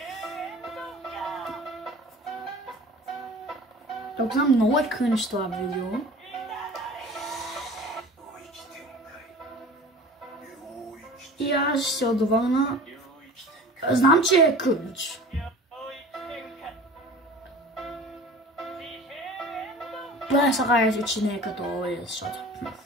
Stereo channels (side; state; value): both; normal; correlation 0.41